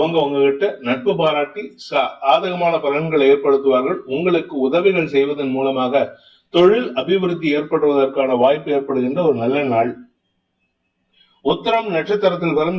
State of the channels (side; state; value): both; identical; correlation 1.00